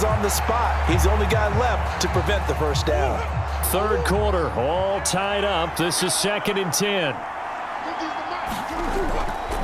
on the spot. He's the only guy left to prevent the first down. Third quarter, all tied up. This is 2nd and 10.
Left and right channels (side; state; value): both; identical; correlation 1.00